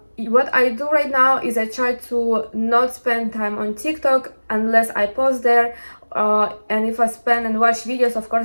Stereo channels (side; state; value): both; inverted; correlation -1.00